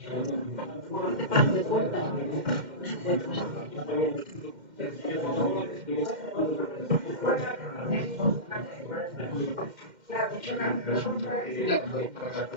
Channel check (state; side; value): late; left; 2.1 ms